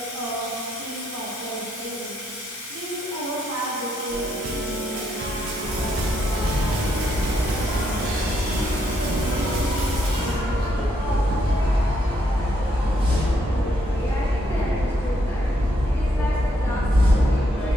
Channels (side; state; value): both; normal; correlation 0.75